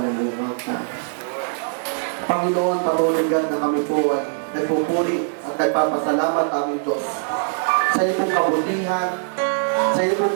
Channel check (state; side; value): silent; left; digital silence